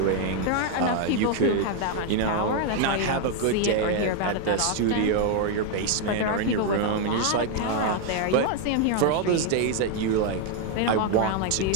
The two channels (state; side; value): different; both; correlation 0.01